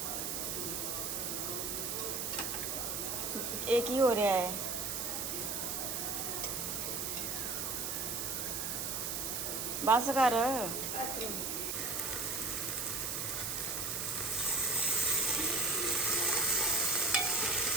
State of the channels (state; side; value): noise; right; hiss, 2 dB below the sound